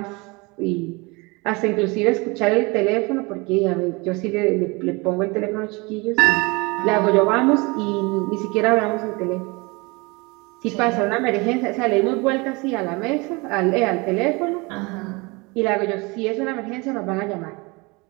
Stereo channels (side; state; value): left; quieter; 26.6 dB